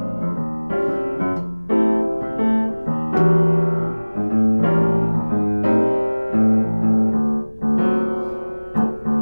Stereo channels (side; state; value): both; inverted; correlation -1.00